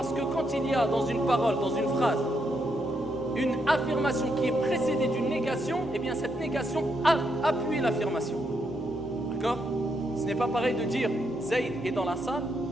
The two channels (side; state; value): both; normal; correlation 0.79